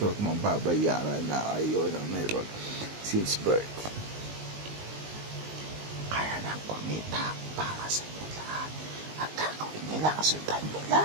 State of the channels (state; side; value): late; left; 19 ms